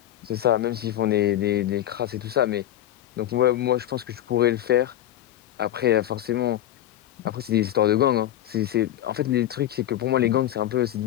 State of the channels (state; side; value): quieter; right; 12.5 dB